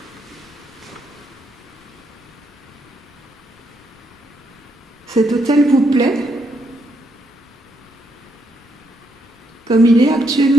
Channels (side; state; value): both; normal; correlation 0.76